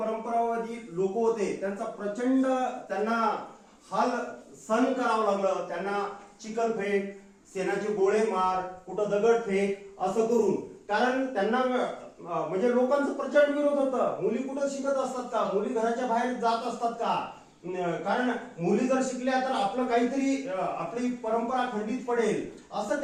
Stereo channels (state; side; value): identical; both; correlation 1.00